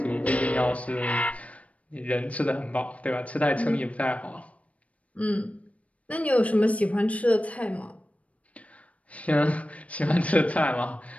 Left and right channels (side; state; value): right; late; 0.066 ms